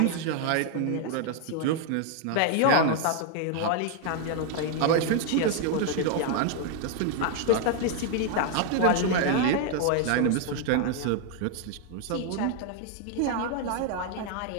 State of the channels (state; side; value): different; both; correlation 0.00